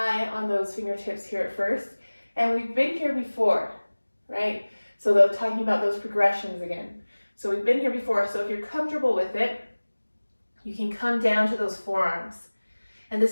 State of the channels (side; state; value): both; inverted; correlation -1.00